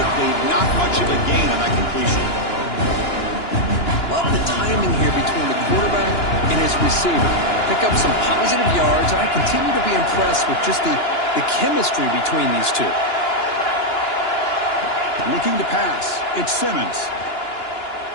not much of a gain on that completion. Love the timing here between the quarterback and his receiver. Pick up some positive yards, and I continue to be impressed with just the chemistry between these two. Looking to pass. It's Simmons.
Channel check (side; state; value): right; late; 2.9 ms